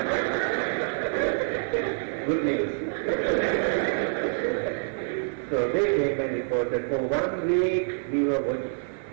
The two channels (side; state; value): left; silent; digital silence